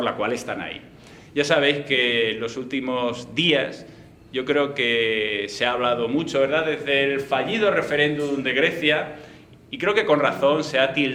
la cual están ahí. Ya sabéis que en los últimos días yo creo que se ha hablado mucho, ¿verdad?, desde el fallido referéndum de Grecia, y creo que con razón se ha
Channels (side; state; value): both; identical; correlation 1.00